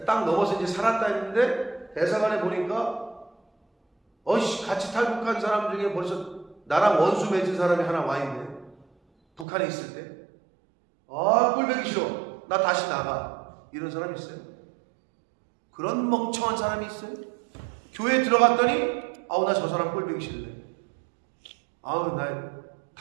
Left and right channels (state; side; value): drops out; left; at 9.5 s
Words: 딱 넘어서 이제 살았다 했는데 대사관에 보니까 같이 탈북한 사람 중에 벌써 나랑 원수 맺은 사람이 하나 와 있네. 북한에 있을 때. 꼴보기 싫어. 나 다시 나가. 이런 사람 있어요? 그런 멍청한 사람이 있어요? 교회에 들어갔더니 나 저 사람 꼴보기 싫네. 나